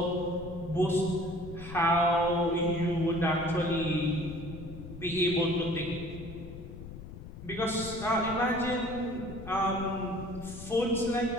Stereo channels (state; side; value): noise; left; rumble, 12 dB below the sound